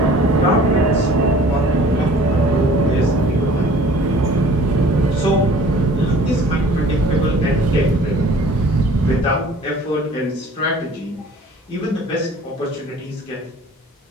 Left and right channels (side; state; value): both; normal; correlation 0.49